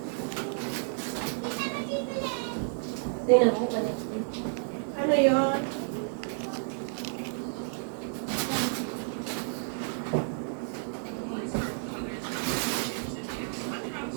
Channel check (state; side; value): silent; left; digital silence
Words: Tingnan ko pa rin. Ano yun?